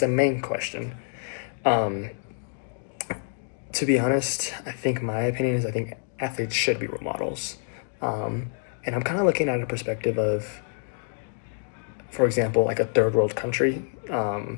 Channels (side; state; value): right; silent; digital silence